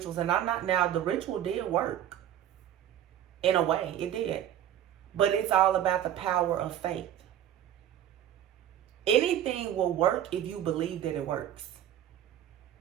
And I'm not, now the ritual did work. In a way, it did. But it's all about the power of faith. Anything will work if you believe that it works.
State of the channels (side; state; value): left; quieter; 11.0 dB